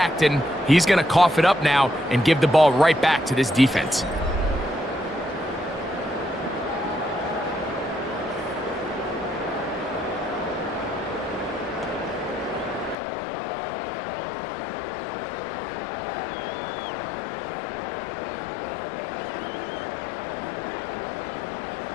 and he's going to cough it up now and give the ball right back to this defense.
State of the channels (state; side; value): drops out; right; at 13.0 s